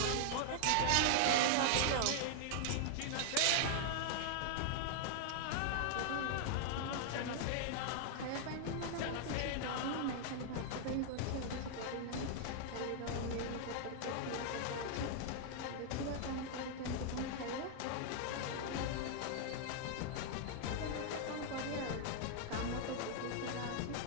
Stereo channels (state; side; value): different; both; correlation 0.00